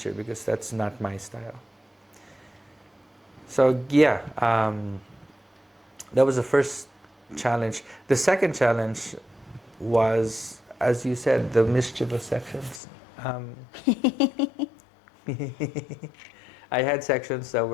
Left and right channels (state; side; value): drops out; right; at 12.8 s